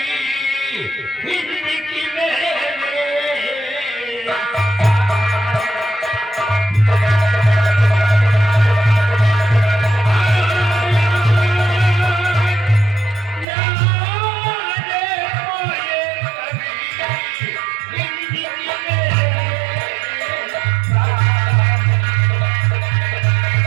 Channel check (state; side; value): drops out; left; at 13.5 s